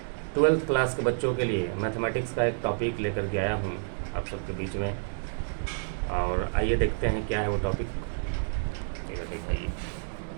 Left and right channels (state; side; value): silent; left; digital silence